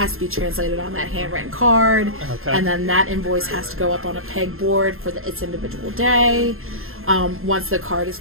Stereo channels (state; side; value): late; left; 0.61 ms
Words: to be translated on that handwritten card. Okay. And then that invoice has to go up on a pegboard for its individual day. Once the card is